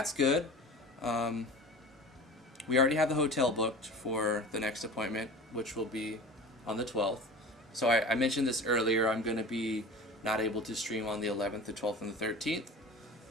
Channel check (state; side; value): normal; both; correlation 0.37